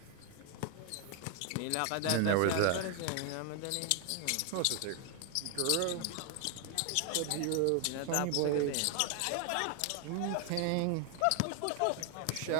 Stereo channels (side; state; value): both; different; correlation 0.00